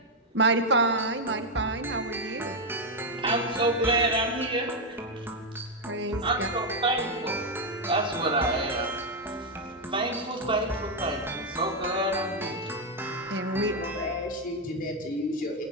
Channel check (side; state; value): both; normal; correlation 0.02